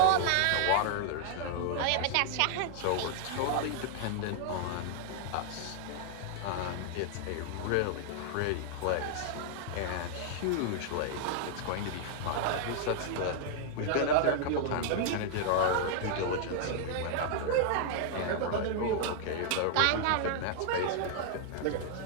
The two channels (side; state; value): both; different; correlation 0.00